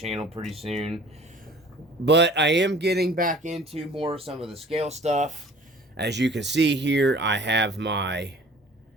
pretty soon. But I am getting back into more of some of the scale stuff. As you can see here, I have my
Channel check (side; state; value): both; normal; correlation 0.49